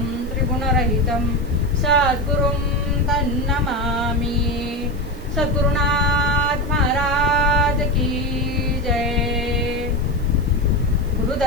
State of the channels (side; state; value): left; noise; hiss, 26 dB below the sound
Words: त्रिगुणरहितं सद्गुरुं तन्नमामि. सद्गुरुनाथ महाराज की जय. गुरु